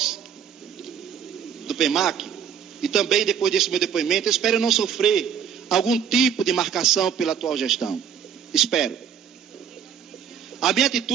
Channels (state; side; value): quieter; left; 8.0 dB